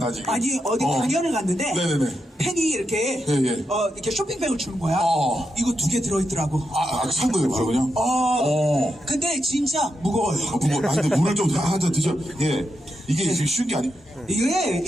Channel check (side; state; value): both; normal; correlation 0.85